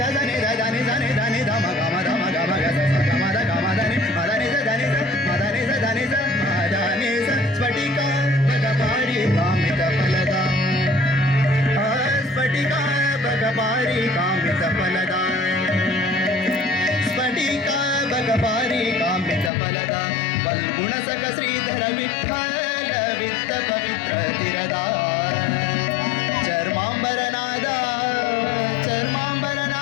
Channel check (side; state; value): right; drops out; at 19.5 s